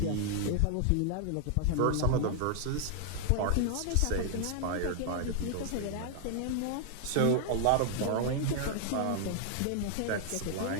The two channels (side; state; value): both; different; correlation 0.00